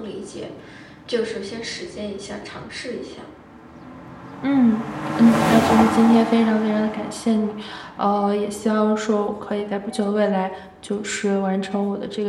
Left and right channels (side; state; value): both; identical; correlation 1.00